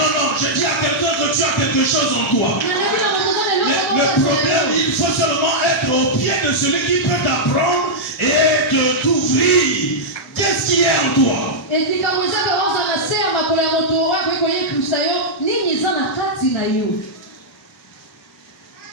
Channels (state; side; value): normal; both; correlation -0.07